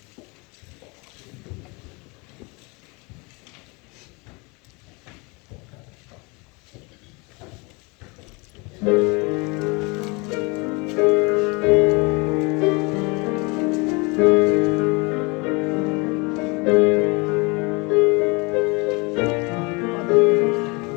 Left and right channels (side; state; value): right; quieter; 28.3 dB